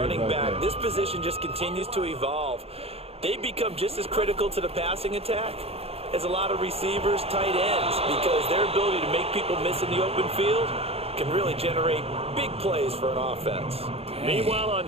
back. This position just continues to evolve. They become just as critical to the passing attack as a lot of receivers, tight ends, because their ability to make people miss in the open field can really generate big plays for an offense. Meanwhile,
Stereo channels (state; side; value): late; left; 0.29 ms